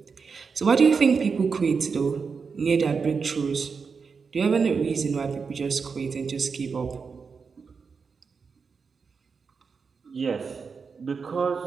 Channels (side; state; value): left; quieter; 5.4 dB